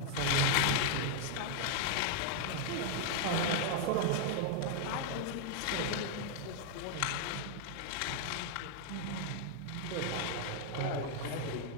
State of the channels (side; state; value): both; different; correlation 0.00